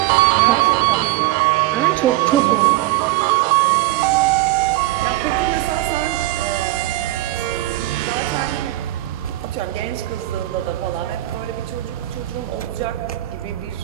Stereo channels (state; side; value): quieter; left; 16.8 dB